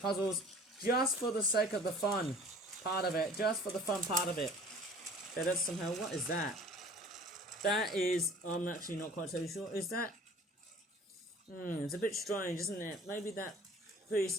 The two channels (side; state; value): both; normal; correlation 0.48